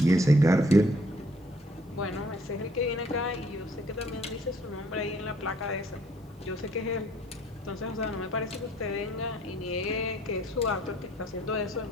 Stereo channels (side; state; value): both; normal; correlation 0.61